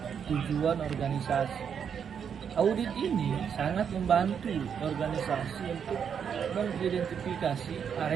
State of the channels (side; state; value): left; quieter; 7.5 dB